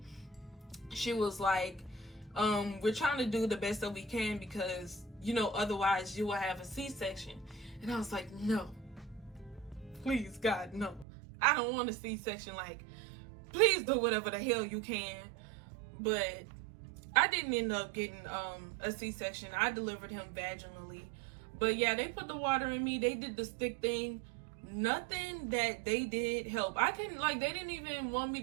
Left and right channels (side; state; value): left; drops out; at 11.1 s